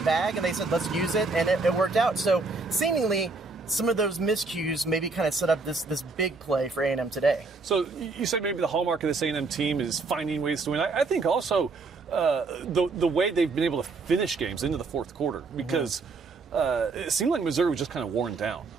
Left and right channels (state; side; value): quieter; left; 3.9 dB